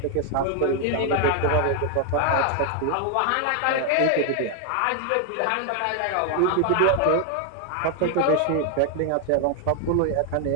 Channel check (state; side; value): different; both; correlation 0.00